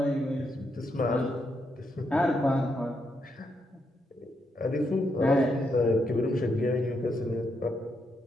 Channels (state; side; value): normal; both; correlation 0.80